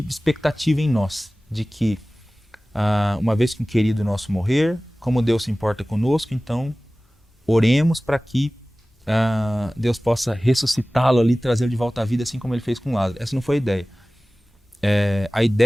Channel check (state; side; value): normal; both; correlation 0.98